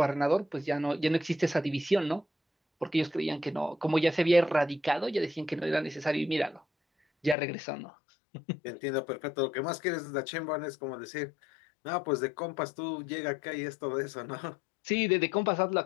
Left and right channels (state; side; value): drops out; right; at 7.4 s